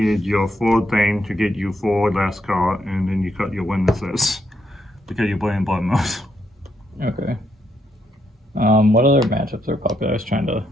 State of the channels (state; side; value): normal; both; correlation 0.78